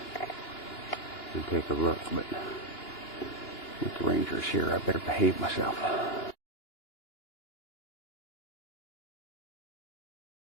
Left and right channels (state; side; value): late; right; 2.9 ms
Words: and take a look, but with the rangers here, I better behave myself.